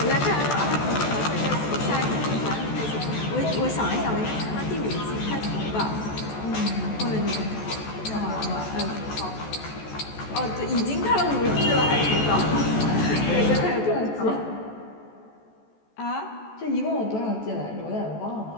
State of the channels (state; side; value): late; right; 14 ms